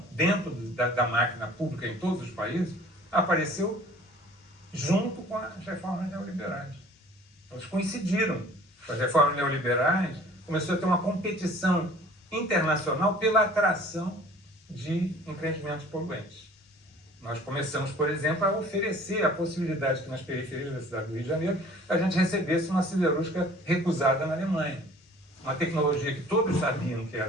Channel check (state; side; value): normal; both; correlation 0.50